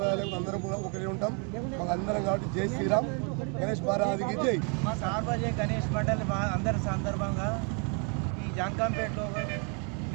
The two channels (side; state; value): left; quieter; 37.5 dB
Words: భేదాలు అందరం కూడా ఒకటే ఉంటాం. మాకు అందరం కాబట్టి జై శ్రీరామ్, గణేష్ మహారాజుకి జై. మా సార్వజనిక గణేష్ మండలి అందరి సందర్భంగా ఈ జాన్కంపేటలో